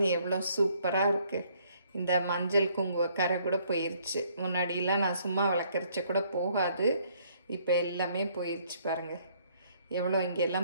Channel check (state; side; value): inverted; both; correlation -0.65